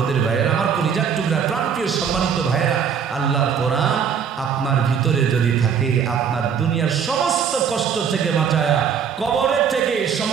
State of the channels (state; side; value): quieter; left; 7.2 dB